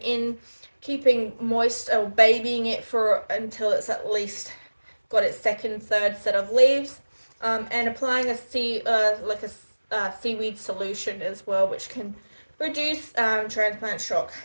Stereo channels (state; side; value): inverted; both; correlation -1.00